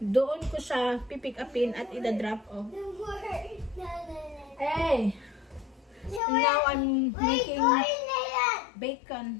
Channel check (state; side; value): drops out; right; at 6.2 s